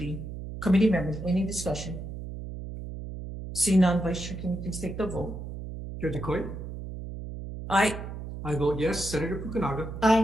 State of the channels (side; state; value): right; noise; hum, 9 dB below the sound